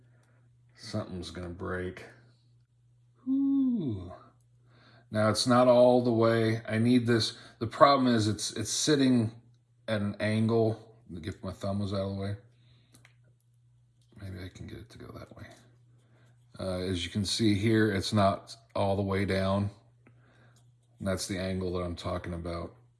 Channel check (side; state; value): both; identical; correlation 1.00